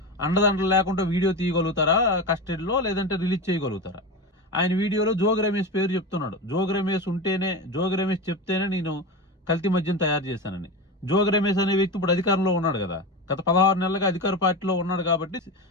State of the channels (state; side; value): normal; both; correlation 0.22